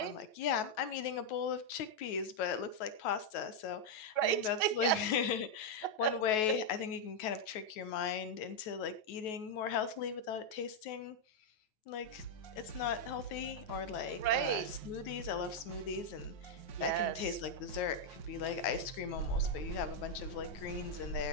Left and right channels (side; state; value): right; late; 9.3 ms